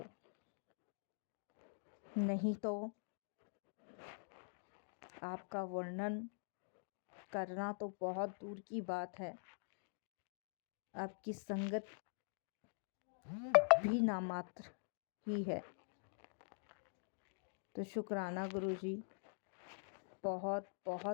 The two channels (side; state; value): right; silent; digital silence